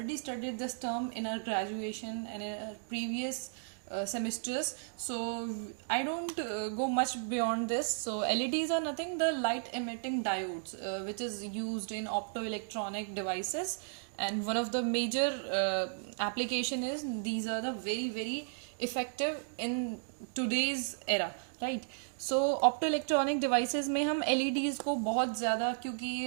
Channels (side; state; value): left; silent; digital silence